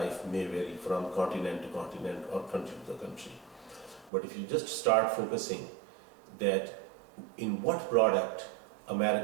may vary from continent to continent or country to country. But if you just start focusing that in what product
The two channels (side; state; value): left; drops out; at 4.1 s